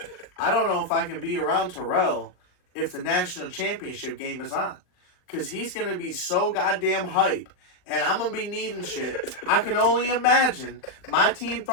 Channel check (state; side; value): late; right; 39 ms